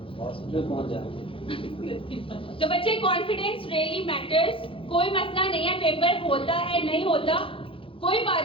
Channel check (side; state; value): right; late; 0.26 ms